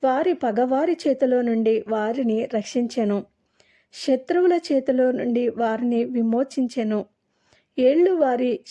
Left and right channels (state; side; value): identical; both; correlation 1.00